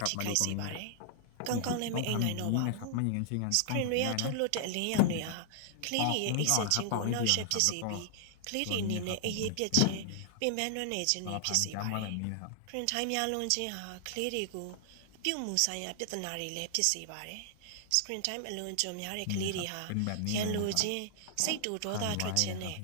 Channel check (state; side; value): different; both; correlation 0.00